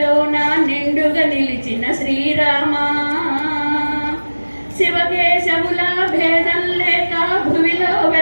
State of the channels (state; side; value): inverted; both; correlation -1.00